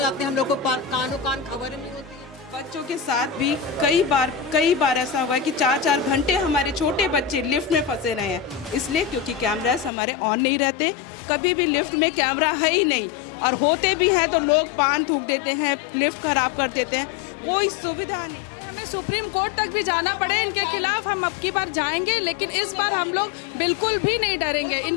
हैं। हम लोग को कान खबर नहीं होती। बच्चों के साथ भी कई बार ऐसा हुआ है कि 4-4 घंटे हमारे छोटे बच्चे लिफ्ट में फंसे रहे हैं, इसलिए क्योंकि कैमरास हमारे ऑन नहीं रहते। कभी भी लिफ्ट में कैमरा है ही नहीं, और होते भी हैं तो लोग पान थूक देते हैं, लिफ्ट खराब कर देते हैं, कोई सुविधा नहीं। सुप्रीम कोर्ट तक भी जाना पड़े इनके खिलाफ हम अब की बार जाएंगे, लेकिन इस बार हम लोग बिल्कुल भी नहीं डरेंगे।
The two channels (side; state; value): right; drops out; at 9.9 s